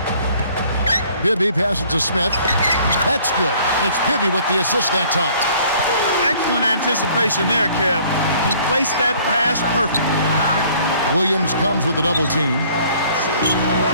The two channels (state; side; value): inverted; both; correlation -0.57